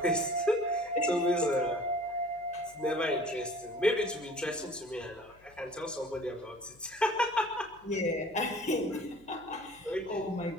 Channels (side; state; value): left; noise; hum, 28 dB below the sound